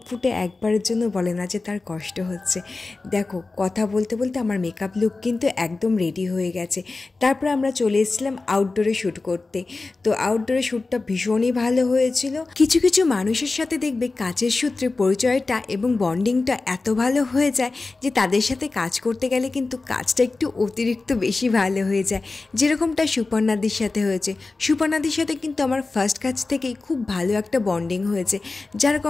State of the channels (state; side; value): quieter; right; 3.6 dB